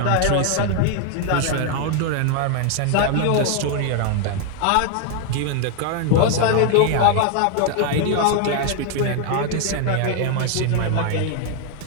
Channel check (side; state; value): both; different; correlation 0.01